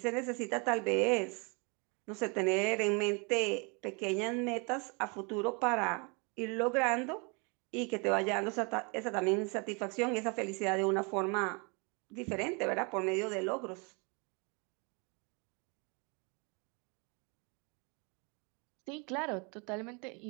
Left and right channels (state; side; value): quieter; left; 32.4 dB